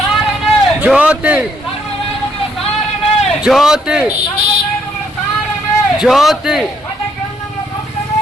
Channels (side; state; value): both; normal; correlation 0.70